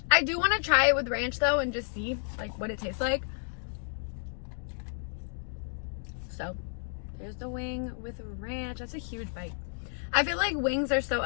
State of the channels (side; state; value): right; silent; digital silence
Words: I do want to try it with ranch though and just see like what it tastes like. So there's the wing with ranch. That's a huge bite. I feel like wings are so